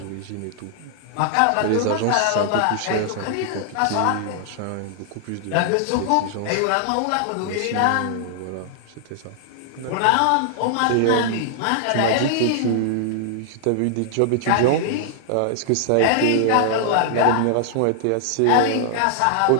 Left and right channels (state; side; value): different; both; correlation -0.01